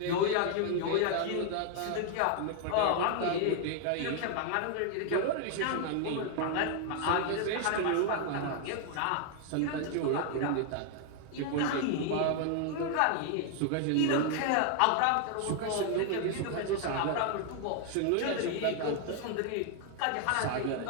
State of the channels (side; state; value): both; different; correlation 0.00